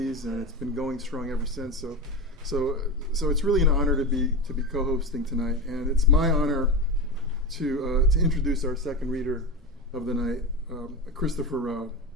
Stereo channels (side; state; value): both; normal; correlation 0.20